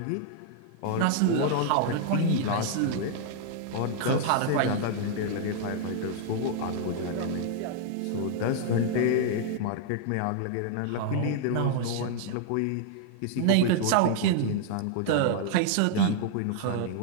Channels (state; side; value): different; both; correlation -0.01